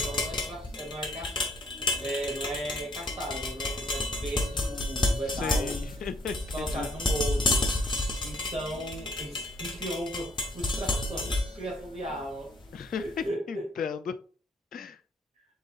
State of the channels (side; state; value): both; normal; correlation 0.64